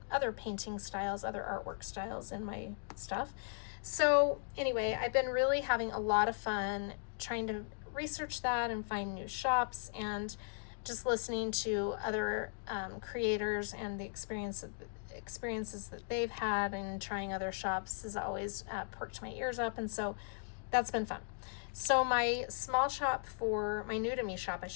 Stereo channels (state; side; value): silent; right; digital silence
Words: painting styles, other artwork styles in my stuff. So anyway, I've been really having a lot of fun trying to research that and find new shops, and just listening to other creators and the experiences that they've had, and trying other shops has always perked my ears up, and so that's been fun. So my small shop for, my new to me shop, I